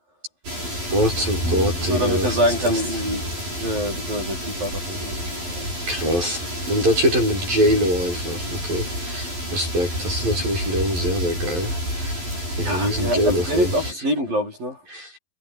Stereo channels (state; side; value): late; left; 11 ms